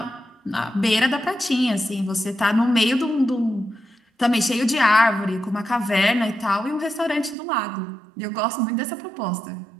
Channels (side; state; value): left; drops out; at 7.4 s